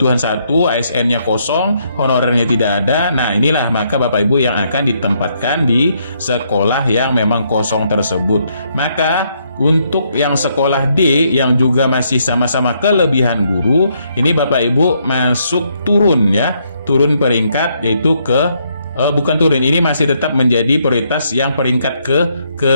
1, ASN-nya kosong, honorernya tidak ada. Nah, inilah maka Bapak Ibu yang akan ditempatkan di sekolah yang memang kosong tersebut. Maka untuk yang sekolah D yang juga masih sama-sama kelebihan guru, ini Bapak Ibu masuk turun, ya, turun peringkat, yaitu ke bukan turun, ini masih tetap menjadi prioritas yang peringkat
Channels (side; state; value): both; inverted; correlation -0.73